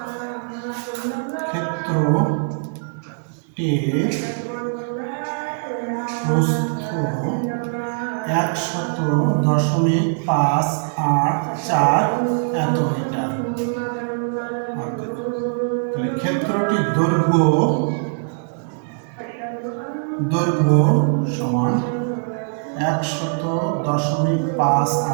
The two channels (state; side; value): silent; left; digital silence